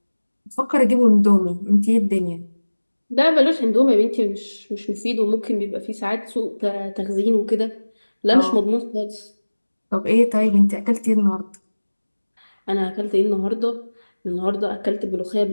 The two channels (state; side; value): inverted; both; correlation -1.00